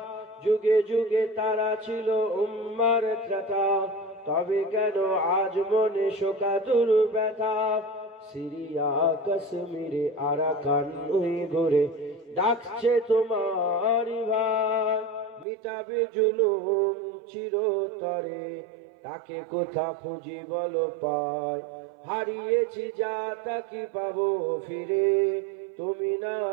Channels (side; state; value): left; drops out; at 15.5 s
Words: যুগে যুগে তারা ছিল উম্মার ত্রাতা, তবে কেন আজ মনে শোকাতুর ব্যথা। সিরিয়া কাশ্মীরে আরাকান ওই ঘুরে ডাকছে তোমার ভাই, মিটাবে জুলুম চিরতরে, তাকে কোথা খুঁজি বলো পায়। হারিয়েছি যা তা কি পাবো ফিরে, তুমি না